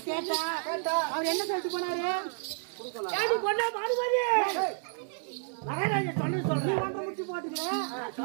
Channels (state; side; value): silent; left; digital silence